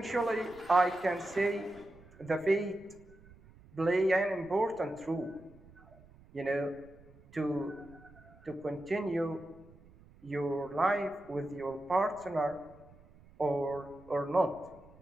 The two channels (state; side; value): noise; right; rumble, 24 dB below the sound